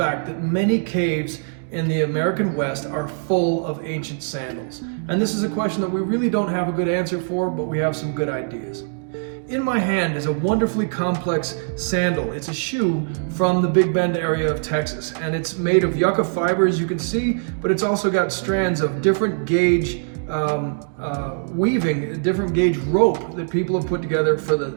that many caves in the American West are full of ancient sandals. And this is a question that we really don't have a good answer for, but we have some good ideas. In my hand is a wonderfully complex sandal. It's a shoe from the Big Bend area of Texas, and it's made of yucca fiber, as you can see, but it's also got strands of different gauge weaving, different gauge rope that people have put together for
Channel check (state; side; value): silent; left; digital silence